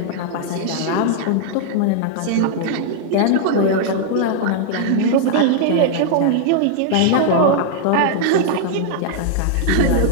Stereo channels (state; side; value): different; both; correlation -0.01